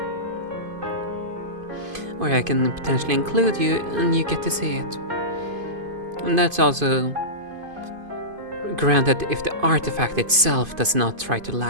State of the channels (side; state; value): left; late; 2.5 ms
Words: Or I can potentially include you and you get to see it. And that's also granted if the artifact itself does not try to